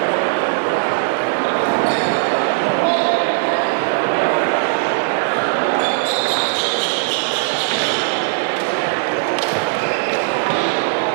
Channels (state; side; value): silent; left; 57 dB below the other